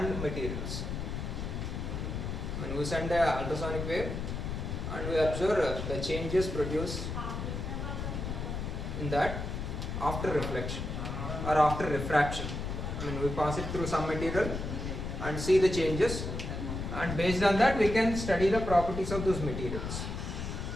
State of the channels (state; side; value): noise; left; rumble, 4 dB below the sound